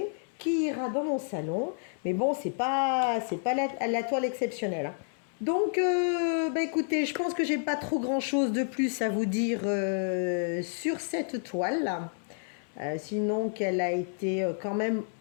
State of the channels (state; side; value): silent; right; 57 dB below the other